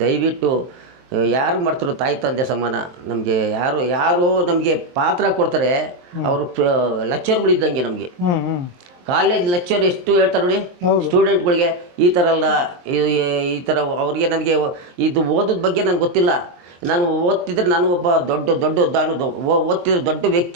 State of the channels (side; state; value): left; late; 23 ms